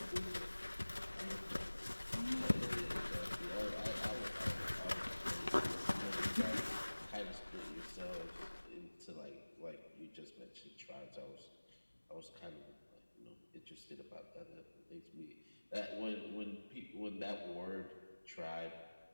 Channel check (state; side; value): inverted; both; correlation -1.00